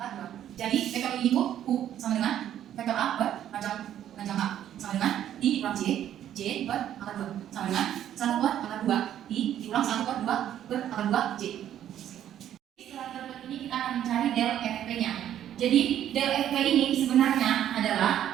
2. Jadi vektor ini itu u sama dengan vektor A per panjang A sama dengan i dikurang j per akar 2 sama dengan 1 per akar 2 i dikurang 1 per 2 per akar 2 j. Setelah kita dapat ini kita akan mencari del fp-nya. Jadi del fp ini sebenarnya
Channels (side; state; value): left; quieter; 10.9 dB